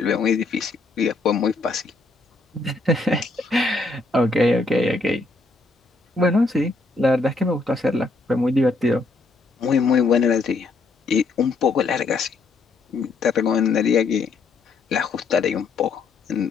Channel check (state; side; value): quieter; right; 3.7 dB